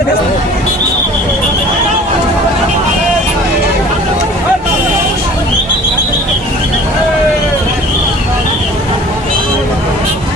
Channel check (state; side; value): normal; both; correlation 0.46